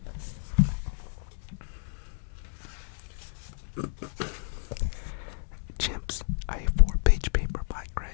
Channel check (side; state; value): right; silent; digital silence